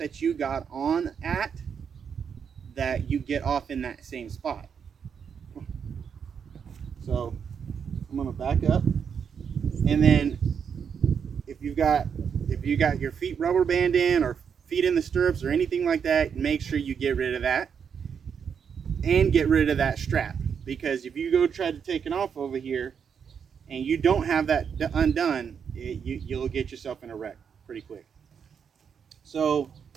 you got on at, that you get off in that same spot. So I'm gonna back up, and then if you got your feet rubber band in or feet in the stirrups or anything like that, make sure you get rid of that and get rid of that strap, because if you go try to take it off over here and you don't have that undone, you'll get yourself in a wreck pretty quick. So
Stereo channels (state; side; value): quieter; left; 7.0 dB